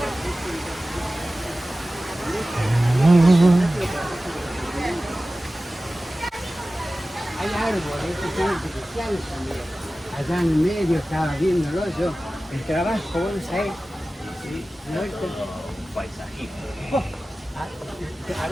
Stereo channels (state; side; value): normal; both; correlation 0.96